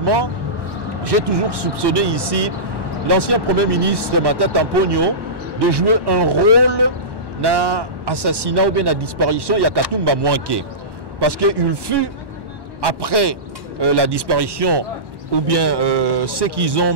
j'ai toujours soupçonné ici l'ancien Premier ministre Matata Mponyo de jouer un rôle dans l'assassinat ou bien la disparition de Katumba Mwanke. Parce qu'il fut, après la disparition, ou bien ce qu'ils ont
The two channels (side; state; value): left; late; 1.1 ms